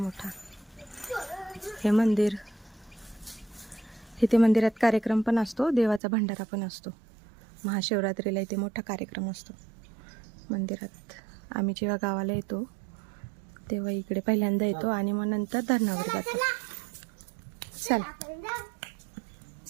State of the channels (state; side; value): drops out; left; at 6.0 s